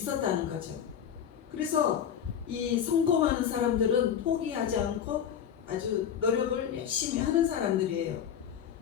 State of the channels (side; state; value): right; quieter; 8.8 dB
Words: 거죠. 그래서 이 성공하는 사람들은 포기하지 않고 아주 노력을 열심히 하는 사람들이에요.